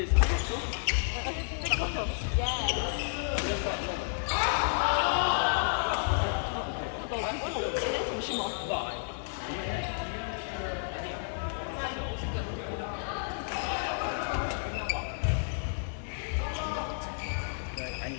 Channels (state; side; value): silent; right; 57 dB below the other